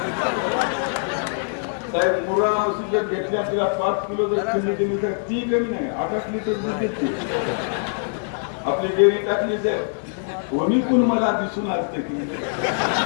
साहेब, मुर्रा म्हशी जर घेतल्या तिला 5 किलो जर खंडी दिली तर ती कमी नाही 8 लिटर दूध देते. आपली डेअरी टाकली साहेब, कोणी कोण मला दिसून असते की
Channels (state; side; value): silent; right; 55 dB below the other